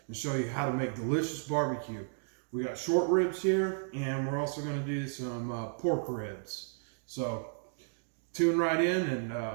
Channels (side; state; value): left; silent; digital silence